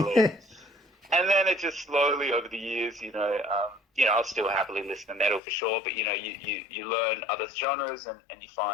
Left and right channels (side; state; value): right; drops out; at 5.4 s